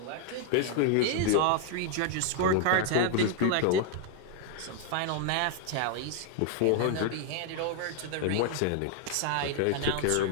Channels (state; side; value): different; both; correlation 0.00